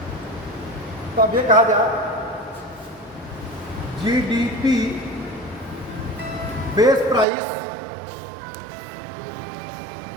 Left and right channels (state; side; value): drops out; left; at 7.2 s